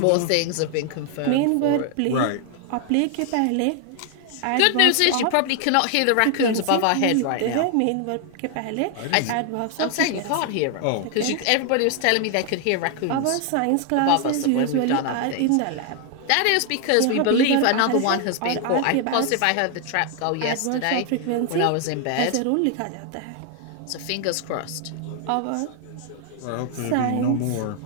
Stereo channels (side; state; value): both; different; correlation 0.00